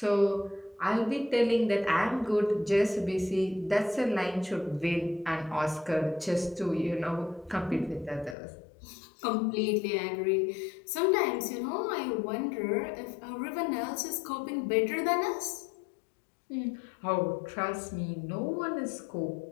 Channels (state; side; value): drops out; right; at 8.3 s